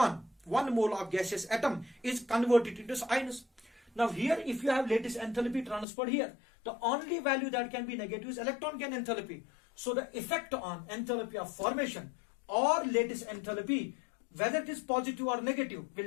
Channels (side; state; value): right; drops out; at 5.9 s